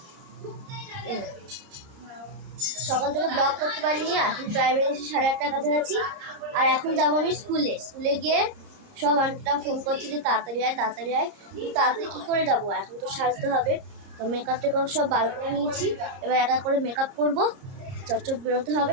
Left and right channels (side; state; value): left; late; 30 ms